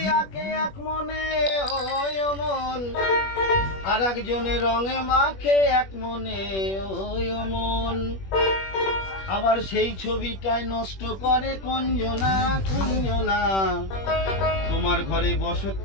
আঁকে এক মনে ওই অমন, আর একজনের রঙে মাখে এক মনে ওই অমন। আবার সেই ছবিটাই নষ্ট করে কোনজনা কোনজনা। তোমার ঘরে বসত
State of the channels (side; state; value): right; late; 21 ms